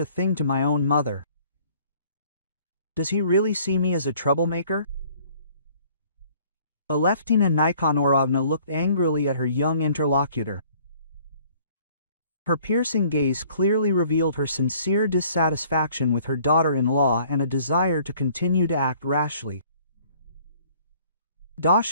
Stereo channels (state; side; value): inverted; both; correlation -0.57